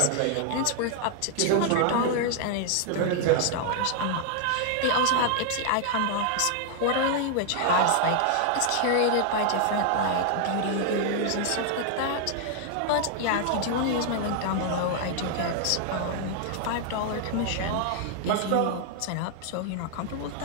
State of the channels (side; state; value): both; different; correlation 0.00